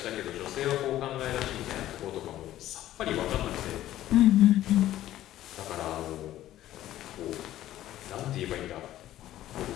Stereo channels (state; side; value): quieter; right; 13.6 dB